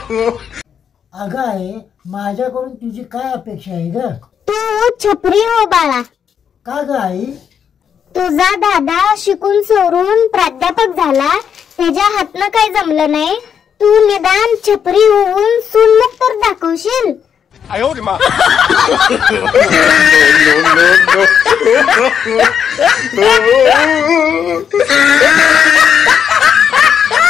अगं आहे, माझ्याकडून तुझी काय अपेक्षा आहे ग? तू छपरी हो बाळा. का ग आई? तुझा दादा शिकून सोडून प्राध्यापक झाला, त्याच्या हातनं काही जमलं नाही. तू निदान छपरी होऊन सूनमुख तर दाखवशील.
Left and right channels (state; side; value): quieter; right; 7.9 dB